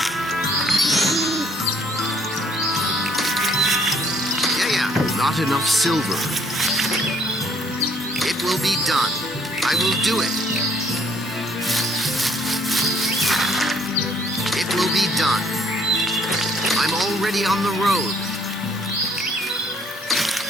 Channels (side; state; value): both; normal; correlation 0.64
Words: Yeah. Not enough silver. It will be done. I will do it. It will be done. I'm already on the road.